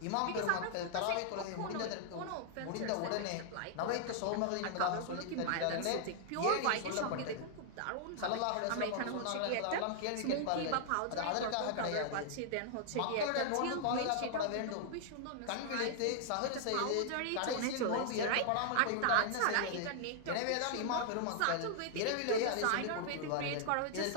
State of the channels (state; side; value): different; both; correlation -0.01